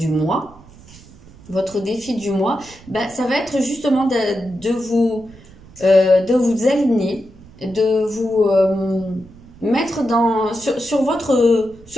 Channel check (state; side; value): noise; right; rumble, 22 dB below the sound